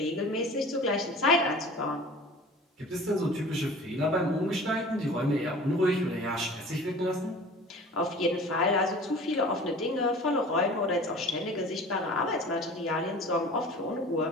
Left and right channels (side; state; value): both; normal; correlation 0.42